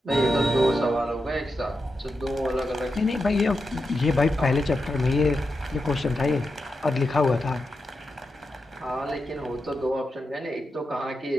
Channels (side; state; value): both; normal; correlation 0.88